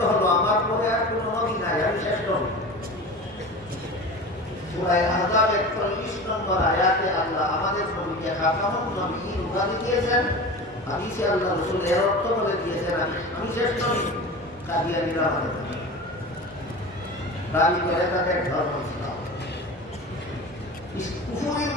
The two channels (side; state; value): both; normal; correlation 0.33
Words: হলো আমার পরে আর কোনো নবী নাই, আমি শেষ নবী। সূরা আহজাবের 40 নম্বর আয়াতে আল্লাহ আমাদের নবীকে খাতামুন নাবিয়্যিন উপাধি দিয়েছেন। হাদিসে আল্লাহ রাসূল এর অর্থ বলে দিয়েছেন, আমি শেষ নবী। কাদিয়ানীরা বলে দাবি করে তাদের ধর্ম ইসলাম। কুফরির